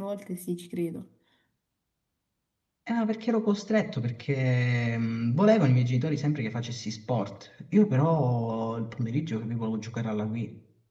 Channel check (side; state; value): both; identical; correlation 1.00